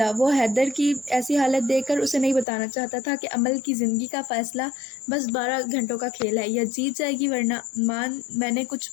وہ حیدر کی ایسی حالت دیکھ کر اسے نہیں بتانا چاہتا تھا کہ عمل کی زندگی کا فیصلہ بس 12 گھنٹوں کا کھیل ہے، یا جیت جائے گی ورنہ۔ امان، میں نے کچھ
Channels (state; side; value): drops out; right; at 2.5 s